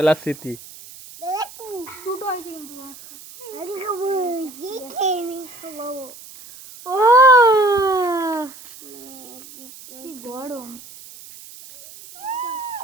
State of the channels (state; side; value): noise; right; hiss, 18 dB below the sound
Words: স্মৃতি দুটো হয়েছে কিন্তু ও কি গরম